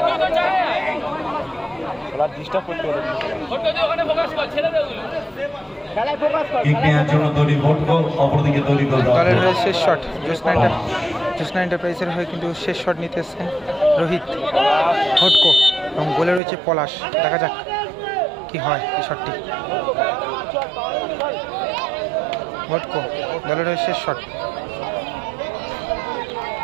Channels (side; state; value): left; drops out; at 16.4 s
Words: Kick নেওয়ার জন্য তৈরি ভোটকো, অপরদিকে তৈরি দল দলের হয়ে শেষ শট জ্যোৎস্না এন্টারপ্রাইজের হয়ে কিন্তু শেষ শট নিতে এসছেন রোহিত ভটকো এবং গোলে রয়েছে পলাশ। দেখা যাক কি হয় এই শটটি। ভটকো দলের হয়ে শেষ শট।